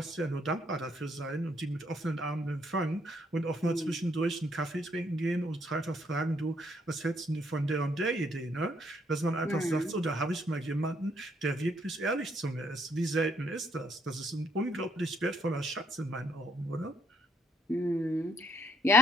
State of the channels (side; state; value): both; normal; correlation 0.70